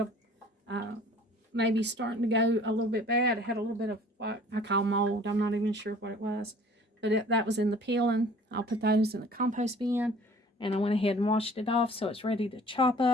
of, maybe starting to go a little bit bad. It had a little bit of what I call mold. I'm not even sure what it was. But that was in the peeling. I'll put those in the compost bin. And I went ahead and washed it off so it's ready to chop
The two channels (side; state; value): both; normal; correlation 0.50